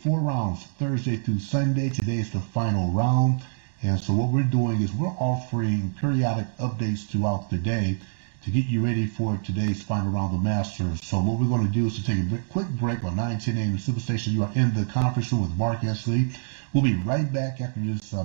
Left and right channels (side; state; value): left; silent; digital silence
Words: rounds, Thursday through Sunday. Today is the final round. And so what we're doing is we're offering periodic updates throughout the day to get you ready for today's final round of the Masters. So what we're going to do is to take a quick break on 9:10 a.m. Superstation. You are in the conference room with Mark Esley. We'll be right back after this